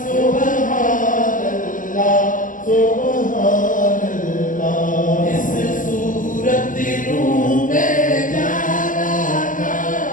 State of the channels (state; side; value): late; right; 0.38 ms